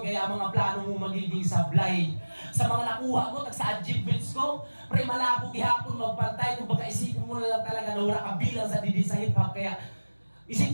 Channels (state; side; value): inverted; both; correlation -1.00